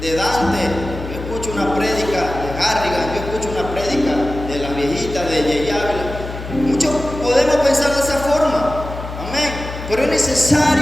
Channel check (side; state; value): left; noise; hum, 9 dB below the sound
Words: de Dante, yo escucho una prédica de Garrigan, yo escucho una prédica de las viejitas de Yey Ávila. Muchos podemos pensar de esa forma. Amén. Pero es